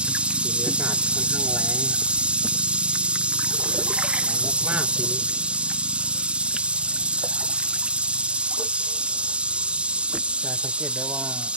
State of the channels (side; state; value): left; late; 0.057 ms